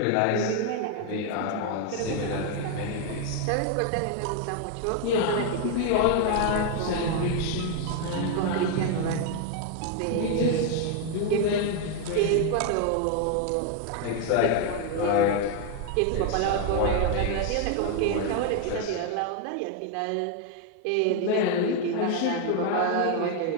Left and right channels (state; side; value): different; both; correlation 0.01